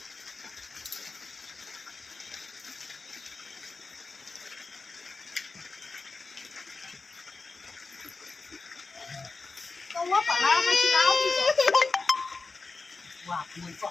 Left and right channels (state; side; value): quieter; right; 4.0 dB